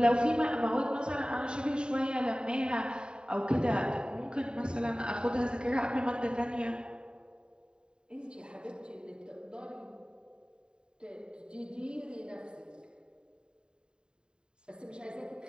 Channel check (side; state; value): left; late; 0.049 ms